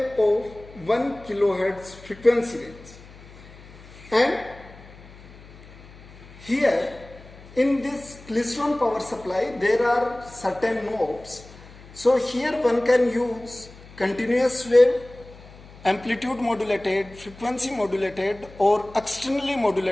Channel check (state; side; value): noise; left; hum, 20 dB below the sound